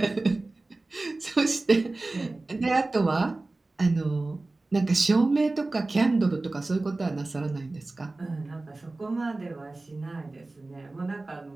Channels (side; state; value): left; quieter; 3.1 dB